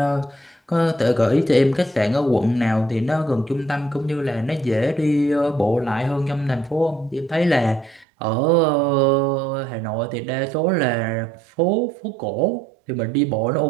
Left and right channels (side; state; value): left; drops out; at 8.1 s